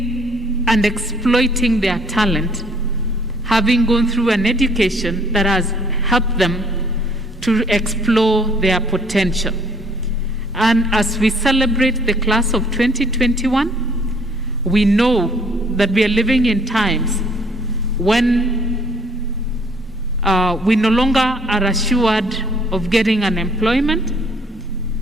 and exploiting their talent, having gone through an education that has helped them to explore their potential. And as we celebrate the class of 2021, we know that we are living in times when we no longer are assured of getting an employment,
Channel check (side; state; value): both; normal; correlation 0.61